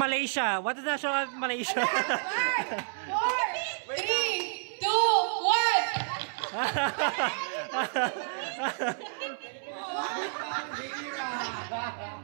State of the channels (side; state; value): left; silent; 58 dB below the other